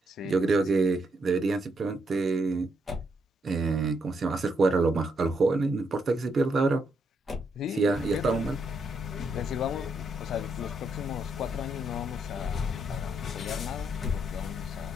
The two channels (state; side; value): normal; both; correlation 0.77